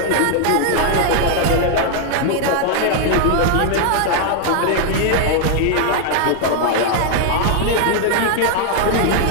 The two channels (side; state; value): both; different; correlation 0.00